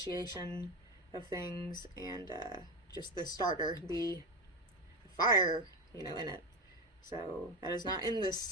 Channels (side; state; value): both; normal; correlation 0.17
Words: of things, and just the starter, the fire, you know, in it. So that is not in